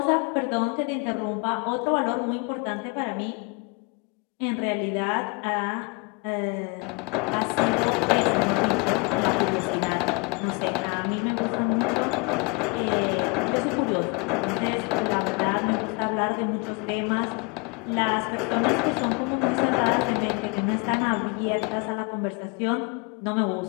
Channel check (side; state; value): right; quieter; 31.5 dB